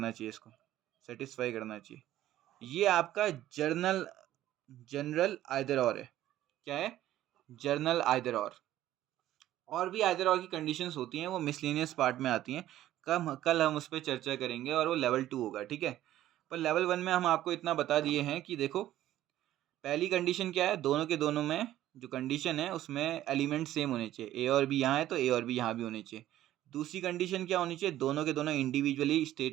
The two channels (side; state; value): left; quieter; 13.5 dB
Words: चाहिए, इसको सेटिस्फाई करना चाहिए। ये आपका जनरल आइदर और है। क्या है, जर्नल आइदर और भी आइदर और की कंडीशंस होती हैं, वो मिसलेनियस पार्ट में आती हैं, कल हम उस पर चर्चा करेंगे और वो लेवल 2 होगा। ठीक है, पर लेवल 1 में हम आपको इतना बता दिए हैं कि देखो पहली कंडीशन क्या है, दोनों के दोनों में जो कंडीशन है उसमें एलिमेंट सेम होने चाहिए, ए और बी यहाँ है तो ए और बी यहाँ भी होने चाहिए। दूसरी कंडीशन क्या होनी चाहिए, दोनों के दोनों इंडिविजुअली